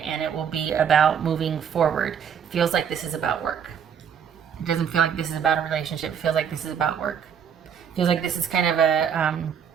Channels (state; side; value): quieter; left; 7.9 dB